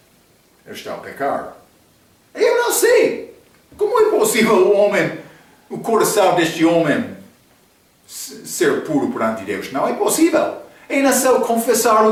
eu estou a pecar. Eu não sei. Como é possível o coração deste homem ser puro perante Deus? Não é possível. É necessário confessar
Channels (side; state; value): both; identical; correlation 1.00